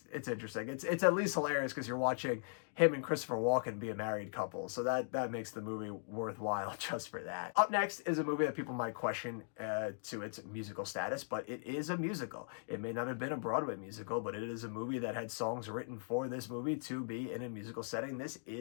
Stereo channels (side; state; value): right; silent; digital silence